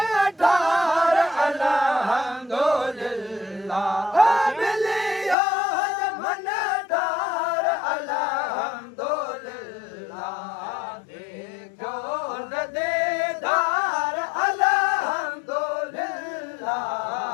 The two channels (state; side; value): drops out; right; at 5.4 s